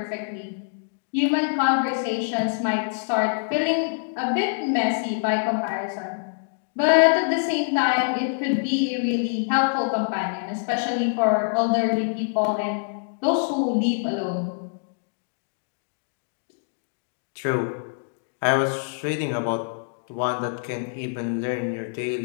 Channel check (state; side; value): silent; right; digital silence